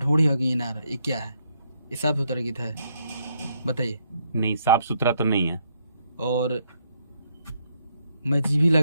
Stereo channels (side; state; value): both; inverted; correlation -0.74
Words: होगी इनार, ये क्या है? ये साफ सुथरा गीत है, बताइए। नहीं, साफ सुथरा तो नहीं है। और मैं जीभी